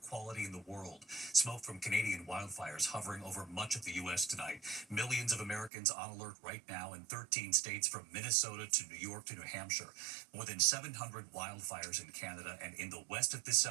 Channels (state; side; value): drops out; left; at 5.7 s